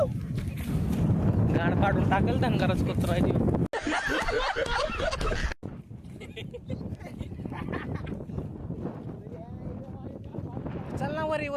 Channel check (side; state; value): both; identical; correlation 1.00